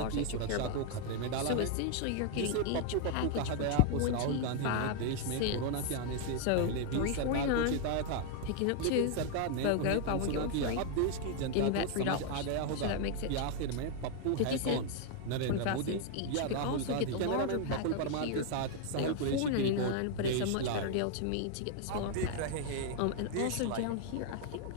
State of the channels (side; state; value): both; different; correlation 0.00